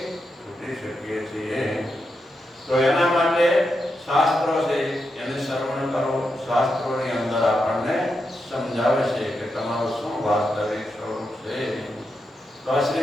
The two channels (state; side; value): normal; both; correlation 0.86